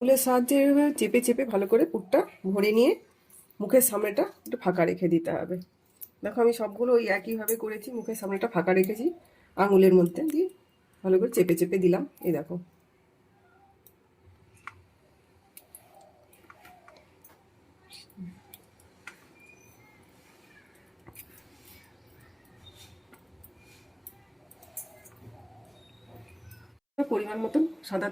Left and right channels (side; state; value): both; identical; correlation 1.00